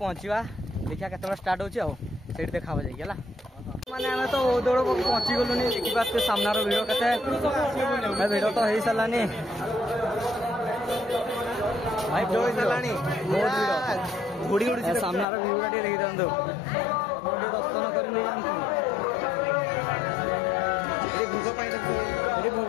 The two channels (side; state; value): right; drops out; at 15.2 s